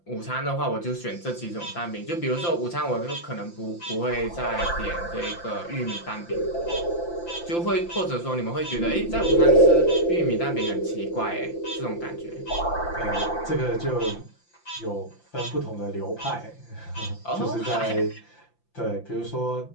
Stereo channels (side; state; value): right; late; 5.8 ms